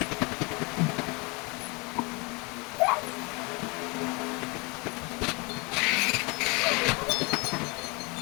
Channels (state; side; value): quieter; right; 28.7 dB